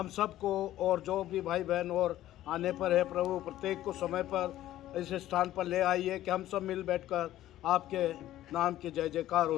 सबको, और जो भी भाई बहन और आने पर है प्रभु, प्रत्येक को समय पर इस स्थान पर ले आइए कि हम सब मिल बैठकर आपके नाम की जय जयकार,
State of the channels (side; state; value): right; quieter; 13.8 dB